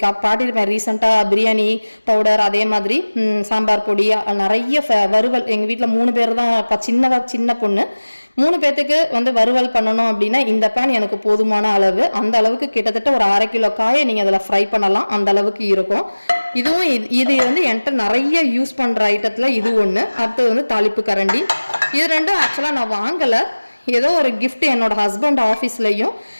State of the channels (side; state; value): both; inverted; correlation -1.00